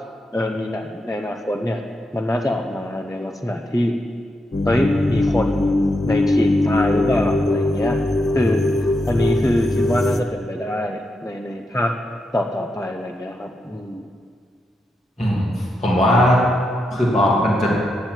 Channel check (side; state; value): both; normal; correlation 0.84